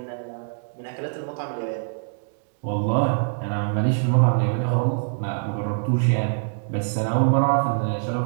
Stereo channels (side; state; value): left; silent; digital silence